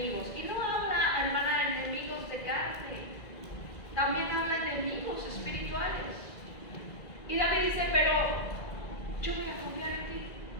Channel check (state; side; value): late; right; 2.0 ms